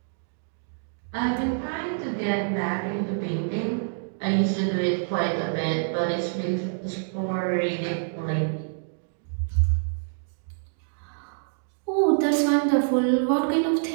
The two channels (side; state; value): left; silent; digital silence